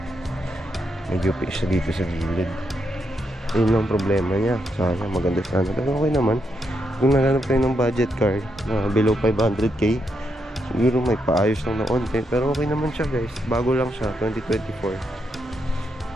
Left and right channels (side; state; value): both; normal; correlation 0.81